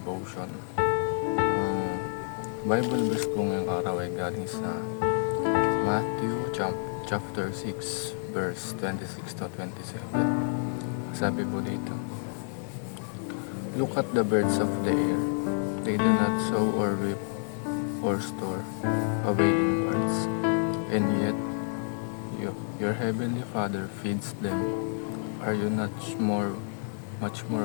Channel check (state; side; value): silent; right; digital silence